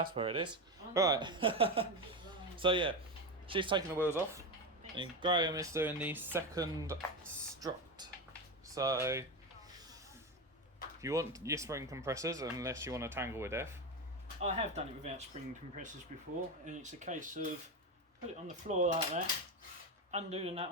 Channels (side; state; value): both; normal; correlation 0.16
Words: where it is. Right. So yeah, she's taking the wheels off. And Graham is doing the second strut. So if you want your spring compressors, unless you want to tangle with F. I have done it without spring compressors before, and it's a case of put it on the floor like that, undo the nut.